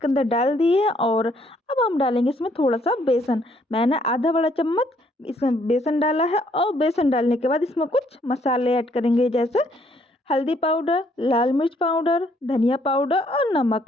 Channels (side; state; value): both; normal; correlation 0.67